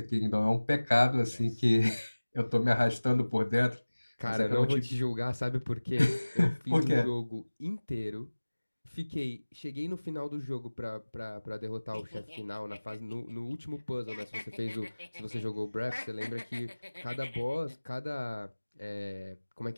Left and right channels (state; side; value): inverted; both; correlation -1.00